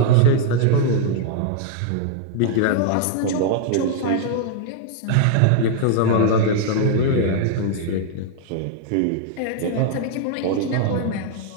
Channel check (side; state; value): both; different; correlation 0.00